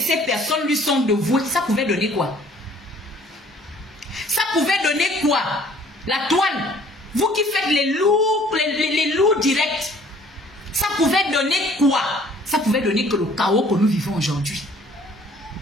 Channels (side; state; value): both; normal; correlation 0.56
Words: personnes lui sont dévouées. Ça pouvait donner quoi? Ça pouvait donner quoi? La toile. Vous qui faites les loups directs. Ça pouvait donner quoi? Ça pouvait donner que le chaos que nous vivons aujourd'hui.